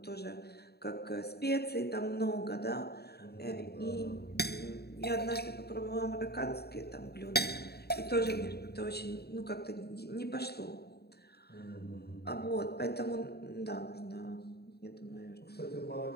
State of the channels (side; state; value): right; late; 0.47 ms